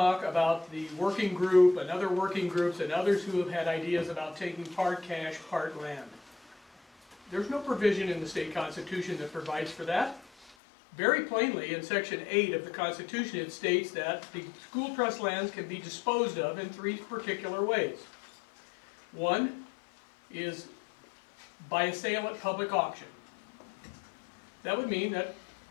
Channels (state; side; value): drops out; right; at 10.6 s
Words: about the working group and other working groups and others who have had ideas about taking part cash, part land. There's no provision in the state constitution that provides for that. Very plainly, in Section 8 of the Constitution, it states that the school trust lands can be disposed of in 3 particular ways. One is by a sale at public auction. That would mean that